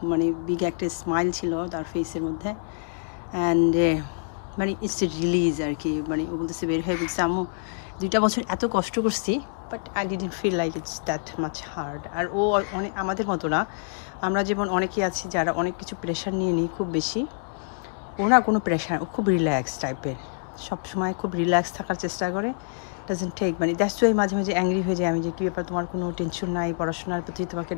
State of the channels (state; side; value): silent; right; digital silence